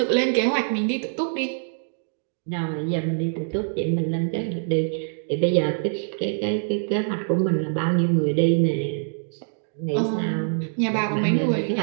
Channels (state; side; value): silent; left; digital silence